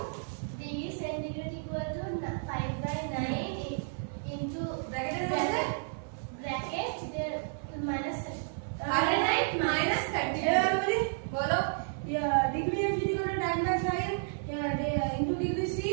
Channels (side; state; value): left; silent; 57 dB below the other